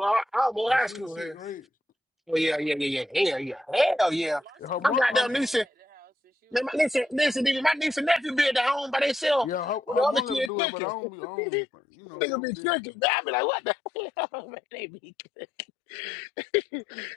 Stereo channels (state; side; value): drops out; right; at 10.5 s